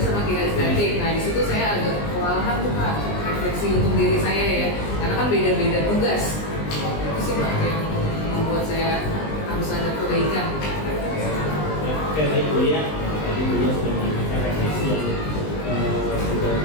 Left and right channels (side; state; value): right; late; 20 ms